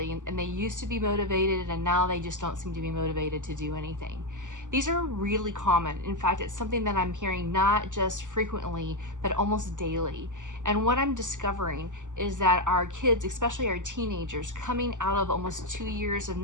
and they used to be motivated and now they just don't seem to be motivated to do anything. These are really common. In fact, it's something that I'm hearing not just frequently, but almost daily. And what I'm discovering is that our kids, especially our teenagers, coming out of almost 2 years of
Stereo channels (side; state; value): left; late; 0.86 ms